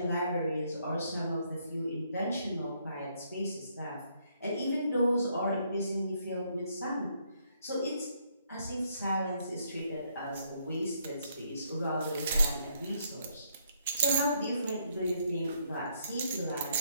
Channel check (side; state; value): both; inverted; correlation -0.71